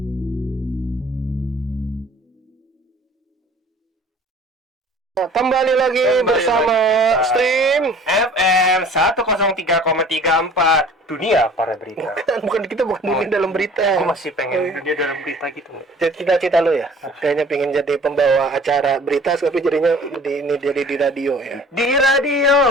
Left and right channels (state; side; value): normal; both; correlation 0.49